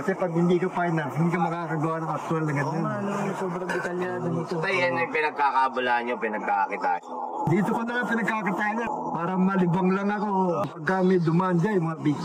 pag hindi ka fine art, hindi ka makakagawa ng actual na ganyan. Sobrang detalyado nito. Ito yan yung pinagkakabulaan nyo, pinagkakakitaan nyo. Dito ko na pinagkakitaan niya. Para malibang lang ako. Pagka may dumaan dyan, mga big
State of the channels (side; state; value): both; identical; correlation 1.00